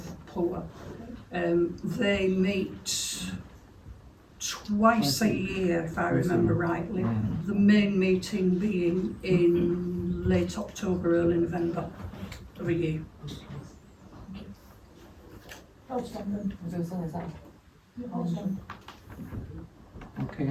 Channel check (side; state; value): both; identical; correlation 1.00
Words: poor. They meet twice a year, if I remember rightly. The main meeting being in late October, early November of a year. Outstanding. Okay,